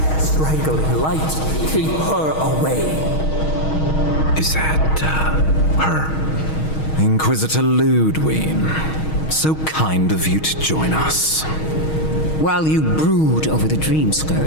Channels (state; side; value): late; right; 6.4 ms